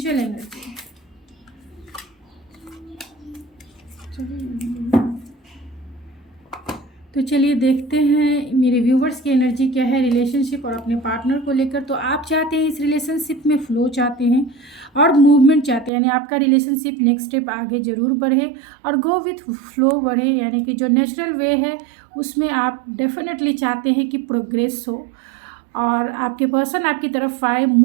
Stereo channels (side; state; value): left; drops out; at 15.9 s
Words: एनर्जी। तो चलिए देखते हैं मेरे व्यूवर्स की एनर्जी क्या है रिलेशनशिप और अपने पार्टनर को लेकर। तो आप चाहते हैं इस रिलेशनशिप में फ्लो चाहते हैं और मूवमेंट चाहते हैं, यानी आपका रिलेशनशिप नेक्स्ट स्टेप आगे ज़रूर बढ़े और गो विथ फ्लो बढ़े, यानी कि जो नेचुरल वे है उसमें आप डेफिनेटली चाहते हैं कि प्रोग्रेस हो और आपके पर्सन आपकी तरफ आए,